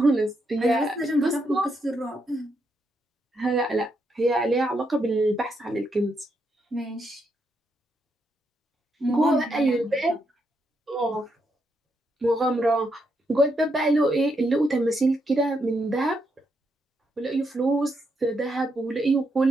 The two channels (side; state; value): both; normal; correlation 0.79